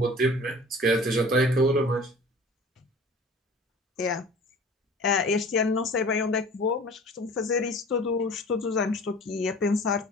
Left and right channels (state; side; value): normal; both; correlation 0.44